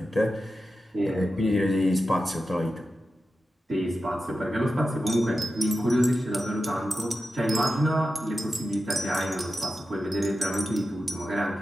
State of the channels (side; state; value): both; normal; correlation 0.91